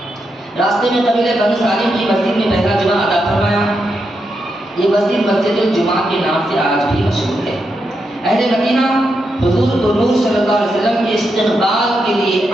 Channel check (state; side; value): normal; both; correlation 0.84